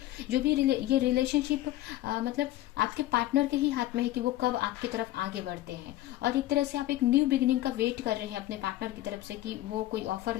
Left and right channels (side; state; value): right; quieter; 15.4 dB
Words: जो भी ये रिलेशनशिप मतलब आपके पार्टनर के ही हाथ में है कि वो कब आपकी तरफ आगे बढ़ते हैं। और एक तरह से आप एक न्यू बिगिनिंग का वेट कर रहे हैं अपने पार्टनर की तरफ से कि वो कोई ऑफर